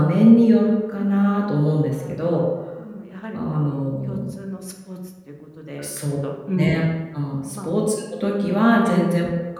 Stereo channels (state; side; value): identical; both; correlation 1.00